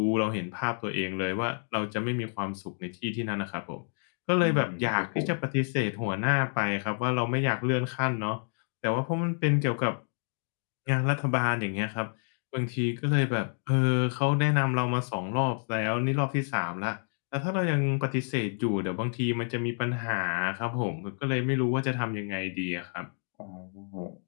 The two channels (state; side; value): silent; right; 58 dB below the other